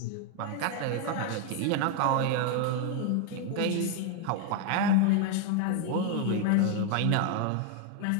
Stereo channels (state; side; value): different; both; correlation 0.01